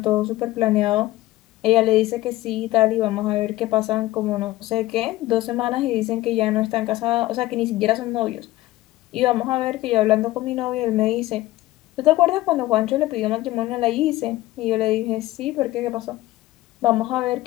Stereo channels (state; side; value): quieter; right; 17.1 dB